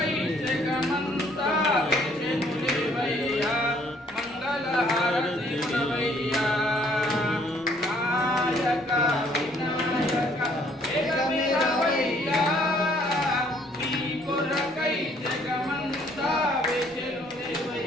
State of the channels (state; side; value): normal; both; correlation 0.63